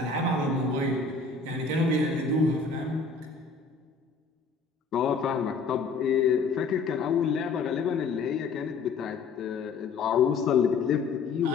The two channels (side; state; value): right; quieter; 4.6 dB